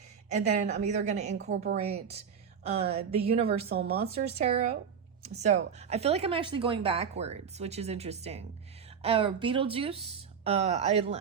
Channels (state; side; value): quieter; left; 7.1 dB